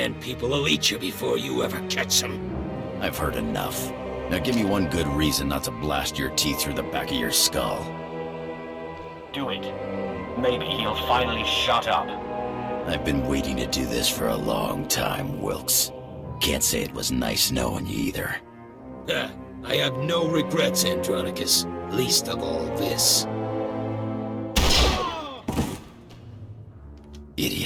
people will eat you before you ever catch them. I've heard enough. Now give me one good reason not to blast your teeth through the back of your skull. Do it. Maybe he'll finally shut up. I've been waiting to do this for a long time, Wilkes. Can't say it was nice knowing you either. I have no regrets, Andronicus. Least of all this.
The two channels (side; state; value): both; identical; correlation 1.00